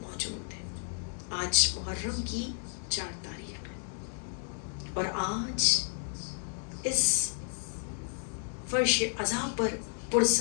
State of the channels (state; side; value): silent; right; 56 dB below the other